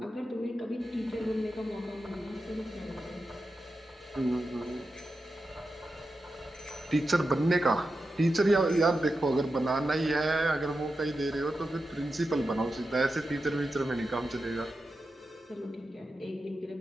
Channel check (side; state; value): both; normal; correlation 0.90